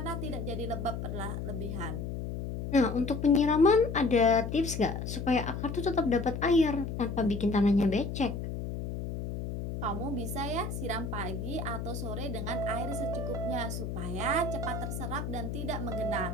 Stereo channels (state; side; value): noise; left; hum, 5 dB below the sound